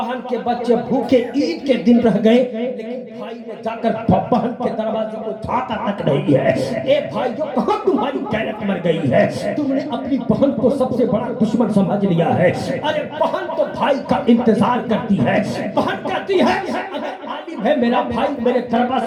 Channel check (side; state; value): both; identical; correlation 1.00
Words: के बच्चे भूखे ईद के दिन रह गए, लेकिन भाई ने जाकर बहन के दरवाजे को झांका तक नहीं है। ए भाइयों, कहां तुम्हारी गैरत मर गई है? तुमने अपनी बहन को सबसे बड़ा दुश्मन समझ लिया है। अरे बहन तो भाई का इंतजार करती है, बहन कहती है अगर आलिम है मेरा भाई मेरे